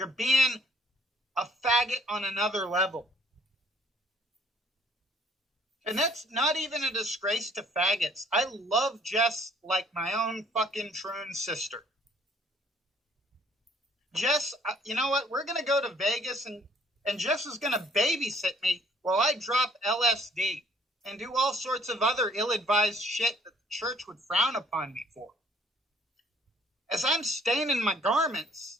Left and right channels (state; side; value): normal; both; correlation 0.60